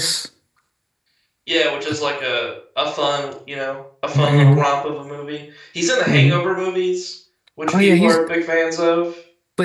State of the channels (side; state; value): both; identical; correlation 1.00